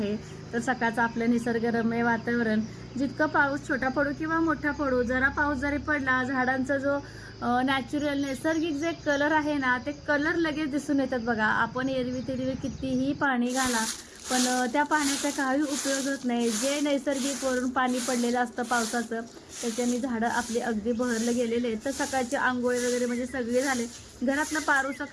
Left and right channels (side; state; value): both; identical; correlation 1.00